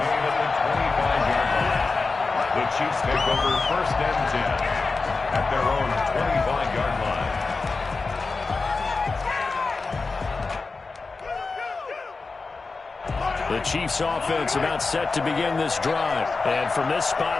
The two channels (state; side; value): quieter; right; 4.1 dB